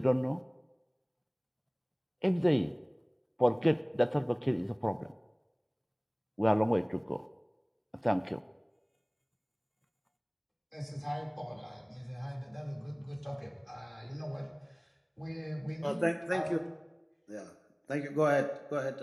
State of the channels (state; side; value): identical; both; correlation 1.00